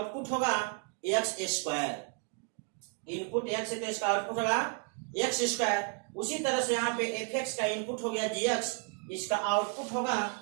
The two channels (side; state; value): left; quieter; 40.0 dB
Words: होगा x²। इनपुट x है तो इसका आउटपुट होगा x²। उसी तरह से यहाँ पे f(x) का इनपुट हो गया g(x), इसका आउटपुट होगा